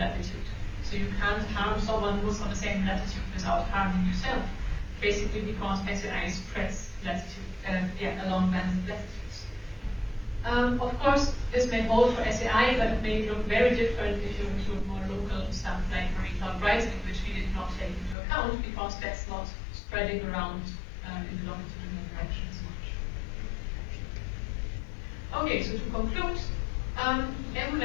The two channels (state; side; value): drops out; right; at 18.2 s